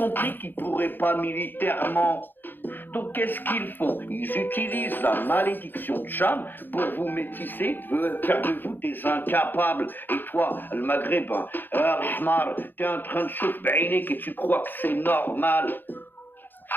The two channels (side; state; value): right; late; 0.093 ms